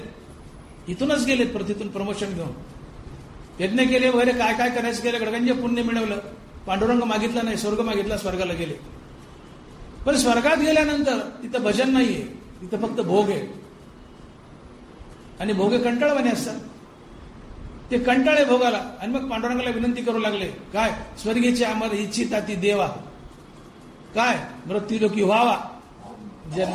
इथूनच गेलेत पृथ्वीतून प्रमोशन घेऊन, यज्ञ केले वगैरे काय काय करायचं केलं, गडगंज पुण्य मिळवलं, पांडुरंग मागितला नाही, स्वर्ग मागितला, स्वर्गाला गेले. पण स्वर्गात गेल्यानंतर तिथं भजन नाहीये, तिथं फक्त भोग आहे. आणि भोगे कंटाळवाणे असतात, ते कंटाळे भोगाला. आणि मग पांडुरंगाला विनंती करू लागले, काय स्वर्गीचे आम्हाला इच्छिता ती देवा, काय मृत्यूलोकी व्हावा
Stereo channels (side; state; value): both; identical; correlation 1.00